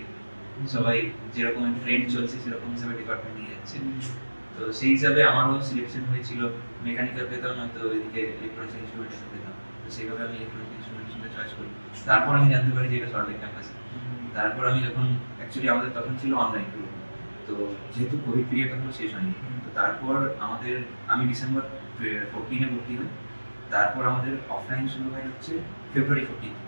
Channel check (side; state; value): both; inverted; correlation -1.00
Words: সবাই যেরকম ট্রেন্ড চলছে সেরকম হিসাবে ডিপার্টমেন্ট নিয়ে যাচ্ছে। তো সেই হিসাবে আমারও সিলেকশন হয়েছিল, মেকানিক্যাল পেতাম, নয়তো এদিকে ইলেকট্রনিক্স ইনস্ট্রুমেন্টেশন পেতাম। তো সেইভাবে আমি ইলেকট্রনিক্স ইনস্ট্রুমেন্টেশনটা চয়েস করি। তারপর আমি জানতে পারি যে এটা সরকারি ক্যাম্পাসে। তারপর আমি যখন অ্যাকচুয়ালি আমাদের তখন ছিল অনলাইন, তো যেহেতু কোভিড পিরিয়ড তখন শেষ হয়নি, তো তারপর আমি ডিসেম্বর 14-এ ভর্তি হই। তারপর আমাদের অফলাইন শুরু হয় হচ্ছে ফেব্রুয়ারি 15